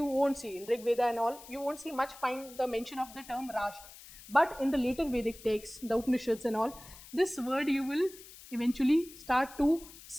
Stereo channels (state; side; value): noise; left; hiss, 18 dB below the sound